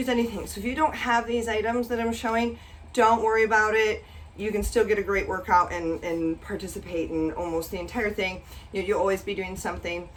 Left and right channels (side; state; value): both; identical; correlation 1.00